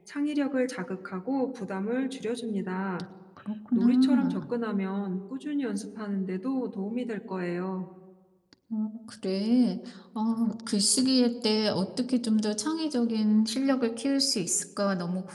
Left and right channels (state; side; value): identical; both; correlation 1.00